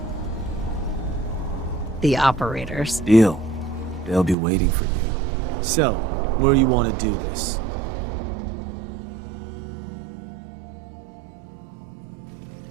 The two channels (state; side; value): drops out; left; at 4.4 s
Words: The operators. Deal. They'll be waiting for you. So, where you want to do this?